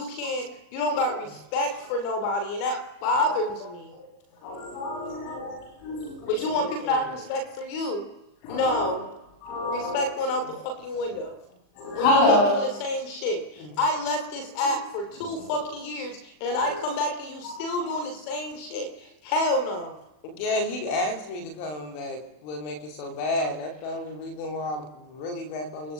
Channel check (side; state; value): right; late; 40 ms